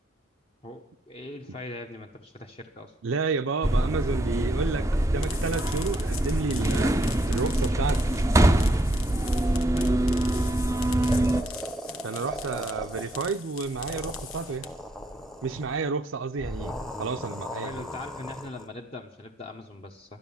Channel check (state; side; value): normal; both; correlation 0.72